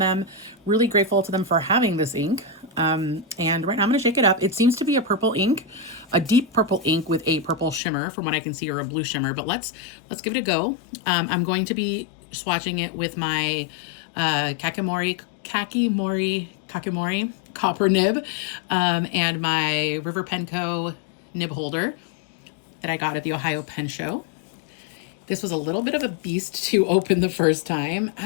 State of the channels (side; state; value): right; drops out; at 7.8 s